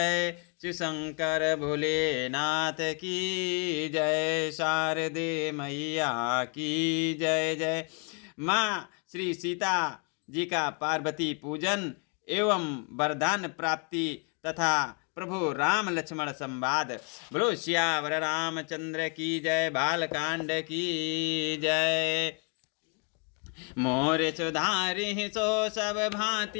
शिव शंकर भोलेनाथ की जय, शारदे मैया की जय जय। माँ श्री सीता जी का पार्वती पूजन एवं वरदान प्राप्ति तथा प्रभु राम लक्ष्मण संवाद। बोलो श्यावर रामचंद्र की जय, बालकांड की जय। मोर सुधारि सो सब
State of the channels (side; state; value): right; quieter; 37.4 dB